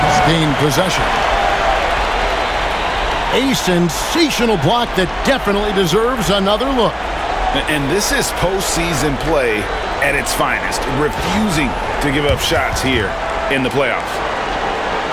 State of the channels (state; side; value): identical; both; correlation 1.00